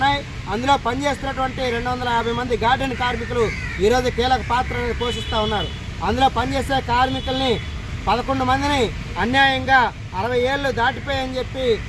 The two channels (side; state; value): both; identical; correlation 1.00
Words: అందులో పనిచేస్తున్నటువంటి 250 మంది గార్డెన్ కార్మికులు ఈరోజు కీలక పాత్రను పోషిస్తూ ఉన్నారు. అందులో పనిచేసే కార్మికుల్ని 11 మందిని అన్యాయంగా 60 ఏళ్ళు దాటిపోయని చెప్పి